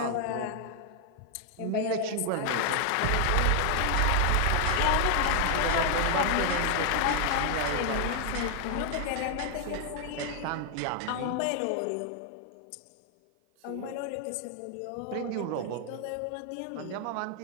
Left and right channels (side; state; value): both; different; correlation 0.00